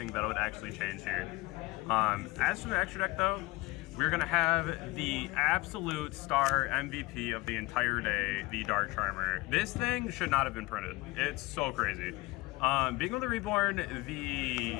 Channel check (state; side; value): quieter; right; 21.7 dB